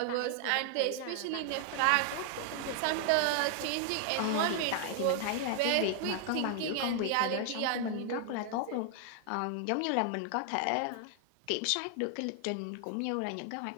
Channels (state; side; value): different; both; correlation 0.00